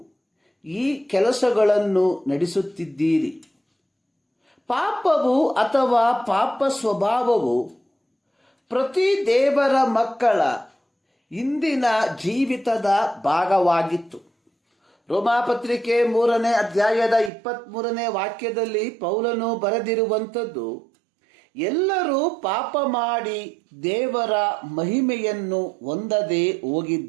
ಈ ಕೆಲಸಗಳನ್ನು ನಡೆಸುತ್ತಿದ್ದೀರಿ. ಪಾಪವು ಅಥವಾ ಪಾಪ ಸ್ವಭಾವವು ಪ್ರತಿ ದೇವರ ಮಕ್ಕಳ ಇಂದಿನ ಜೀವಿತದ ಭಾಗವಾಗಿತ್ತು. ರೋಮಾಪತ್ರಿಕೆ 3ನೇ ಅಧ್ಯಾಯದ 23ನೇ ವಾಕ್ಯದಲ್ಲಿ ಪೌಲನು ಬರೆದಿರುವಂಥದ್ದು, ಎಲ್ಲರೂ ಪಾಪ ಮಾಡಿ ದೇವರ ಮಹಿಮೆಯನ್ನು ಹೊಂದದೆ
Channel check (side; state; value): left; drops out; at 17.3 s